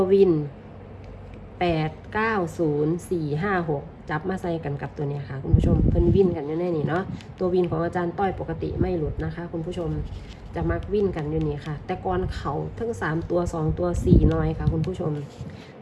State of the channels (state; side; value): identical; both; correlation 1.00